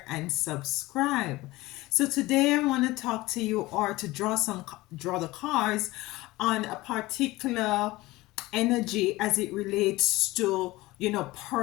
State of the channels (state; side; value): quieter; right; 19.5 dB